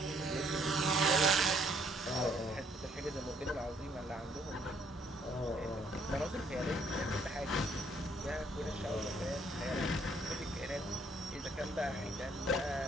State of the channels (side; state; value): both; normal; correlation 0.66